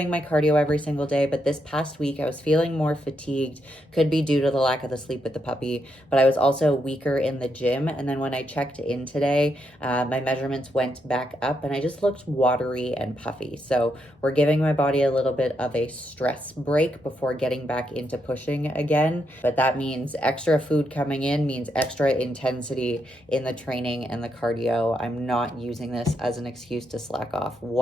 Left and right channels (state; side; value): normal; both; correlation 0.80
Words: my cardio every single day, but this past week I was feeling more fatigued. Could be due to the lack of the sleep with the puppy, but I was also weaker in the gym. And then when I checked in today, my measurements went back up and I just looked watery and puffy. So we're giving my body a little bit of a stress break before getting back into pushing again. But that means extra food coming in means extra intensity in the training and the cardio. I'm not using this as an excuse to slack off